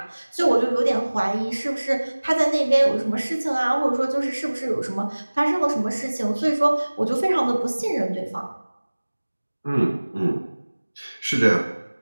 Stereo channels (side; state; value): both; inverted; correlation -1.00